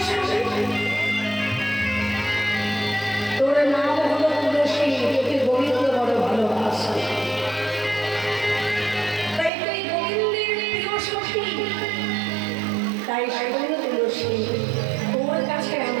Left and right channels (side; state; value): left; drops out; at 9.5 s